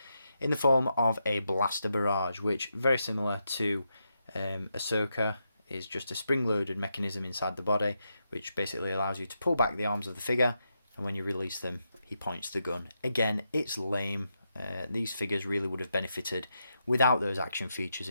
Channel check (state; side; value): inverted; both; correlation -0.84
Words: in the form of a blaster barrage, which very similar to Ahsoka is just a spring-loaded mechanism inside the body, which basically allows you to pull back the arms of the figure, and when you release them he points the gun. Again, it's lame. These figures really would have benefited without those action features